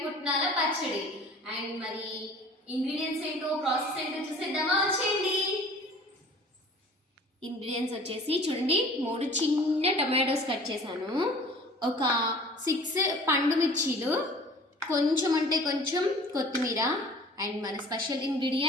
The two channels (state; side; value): normal; both; correlation 0.47